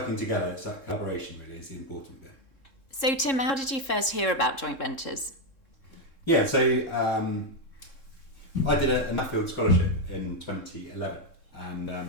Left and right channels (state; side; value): late; right; 3.7 ms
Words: together, it's that collaboration really is the important bit. So Tim, how did you first hear about joint ventures? Yeah, so I did an Nuffield scholarship in 2011, and